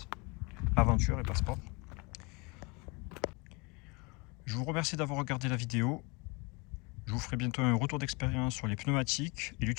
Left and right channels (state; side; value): quieter; right; 28.5 dB